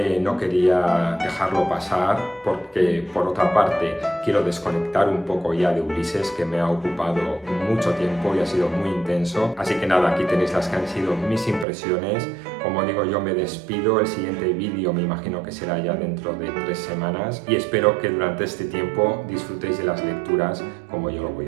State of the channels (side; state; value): left; drops out; at 11.7 s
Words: no quería dejarlo pasar porque por otra parte quiero desconectar un poco ya de Ulises, que me ha ocupado mucho tiempo y ha sido muy intenso. Así que nada, aquí tenéis las que han sido mis impresiones. Como digo, yo me despido, el siguiente vídeo me imagino que será ya dentro de 3 semanas y espero que durante este tiempo disfrutéis de las lecturas como yo lo